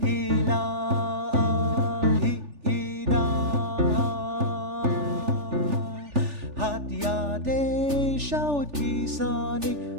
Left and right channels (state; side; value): late; left; 3.4 ms